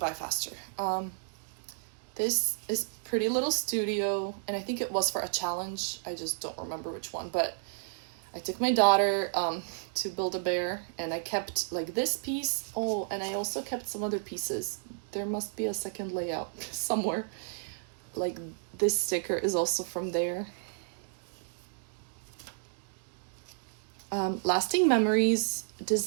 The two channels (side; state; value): left; silent; digital silence